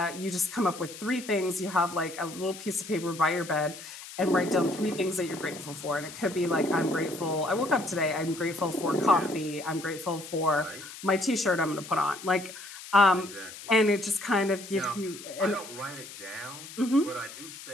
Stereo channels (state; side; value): noise; left; hiss, 14 dB below the sound